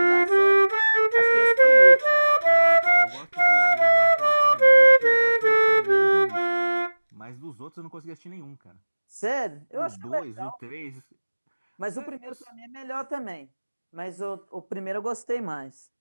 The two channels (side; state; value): both; inverted; correlation -1.00